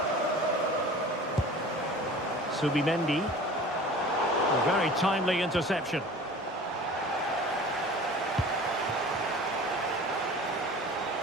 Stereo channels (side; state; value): both; normal; correlation 0.42